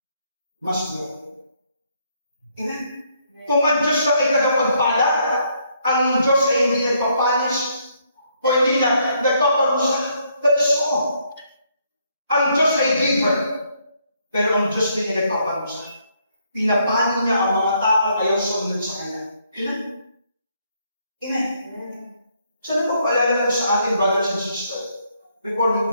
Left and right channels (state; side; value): inverted; both; correlation -0.71